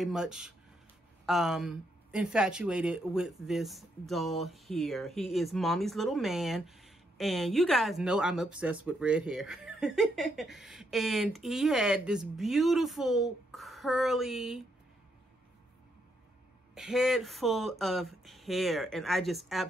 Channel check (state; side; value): normal; both; correlation 0.77